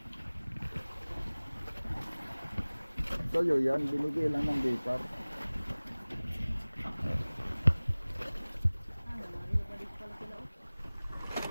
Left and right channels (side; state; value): both; inverted; correlation -1.00